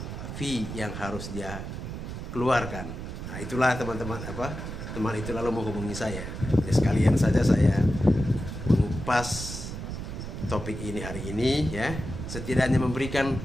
fee yang harus dia keluarkan. Nah, itulah teman-teman teman itu lalu menghubungi saya. Jadi sekalian saja saya mengupas topik ini hari ini ya, setidaknya memberikan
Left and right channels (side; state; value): right; noise; rumble, 7 dB below the sound